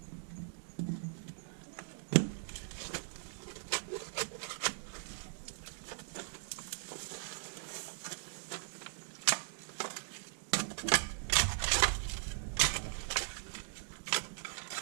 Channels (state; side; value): silent; left; digital silence